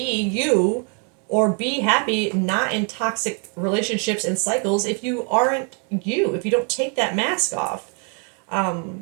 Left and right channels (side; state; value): left; quieter; 39.4 dB